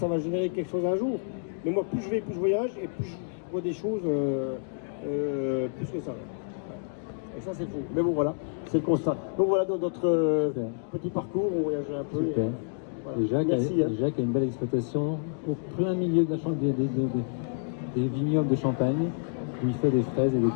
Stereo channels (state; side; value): silent; right; digital silence